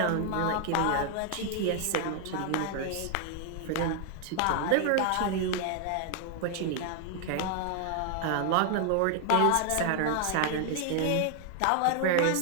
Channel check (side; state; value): both; different; correlation 0.00